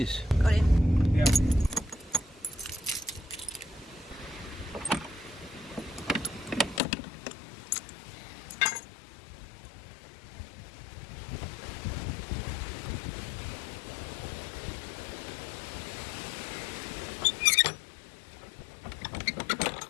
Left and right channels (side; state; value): right; drops out; at 6.8 s